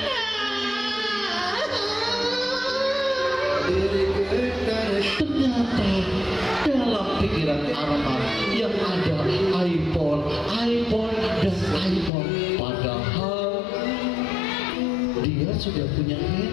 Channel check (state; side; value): drops out; right; at 12.1 s